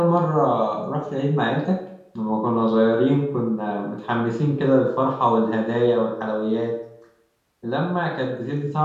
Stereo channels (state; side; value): identical; both; correlation 1.00